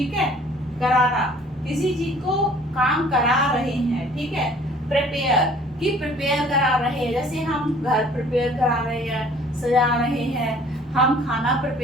है, कराना, किसी चीज को काम करा रहे हैं, ठीक है। प्रिपेयर कि प्रिपेयर करा रहे हैं, जैसे हम घर प्रिपेयर करा रहे हैं, सजा रहे हैं, हम खाना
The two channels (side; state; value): right; noise; rumble, 30 dB below the sound